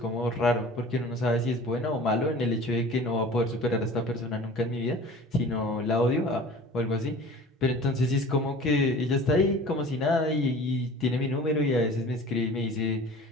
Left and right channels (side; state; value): both; normal; correlation 0.42